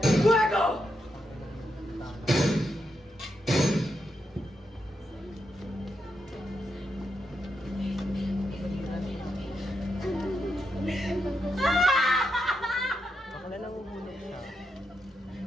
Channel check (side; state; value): both; normal; correlation 0.84